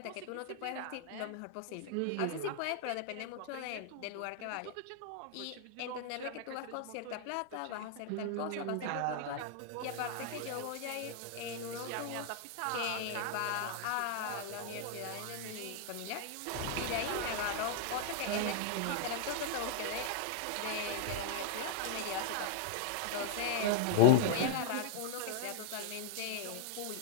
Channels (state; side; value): different; both; correlation -0.01